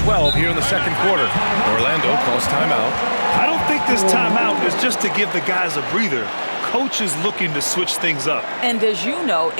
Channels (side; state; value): both; inverted; correlation -1.00